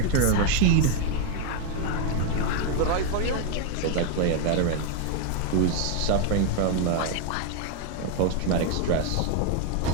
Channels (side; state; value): both; different; correlation 0.01